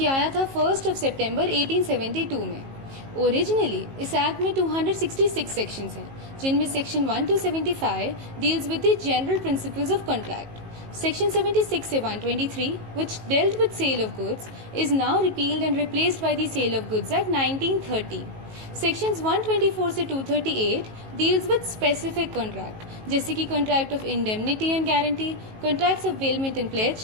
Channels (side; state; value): left; late; 19 ms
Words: आया था 1 सितंबर 1872 में। ओरिजिनली इस एक्ट में 266 सेक्शंस हैं, जिनमें section 1 to 75 deals with the general principles of contract. Section 76 से 123, which dealt with sale of goods, is now repealed and replaced by the Sale of Goods Act 1930. Sections 124 से 238 deals with specific contract, जैसे कि Contract of Indemnity and Guarantee, Contracts of Bailment and